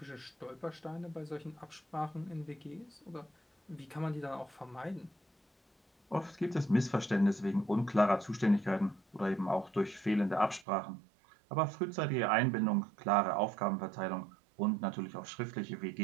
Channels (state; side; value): drops out; left; at 10.7 s